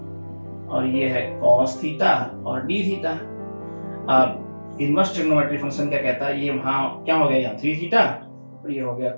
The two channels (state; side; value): inverted; both; correlation -1.00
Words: और ये है cos थीटा और d थीटा। अब इनवर्स ट्रिग्नोमेट्री फंक्शन क्या कहता है, ये वहां क्या हो गया यहाँ 3 थीटा और ये हो गया